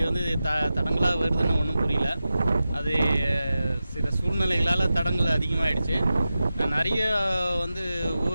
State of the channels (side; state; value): both; inverted; correlation -0.93